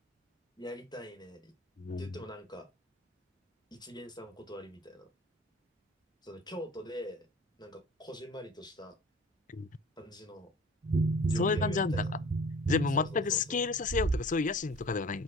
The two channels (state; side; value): normal; both; correlation 0.44